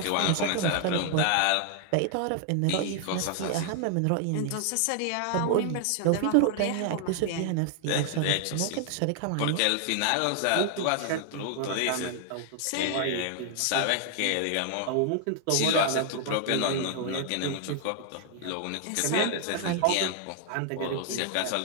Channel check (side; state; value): both; different; correlation 0.00